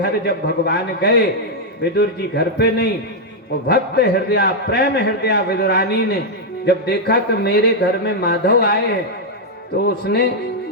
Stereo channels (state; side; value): normal; both; correlation -0.02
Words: जब भगवान गए, विदुर जी घर पे नहीं, वो भक्त हृदय, प्रेम हृदय विदुरानी ने जब देखा कि मेरे घर में माधव आए हैं, तो उसने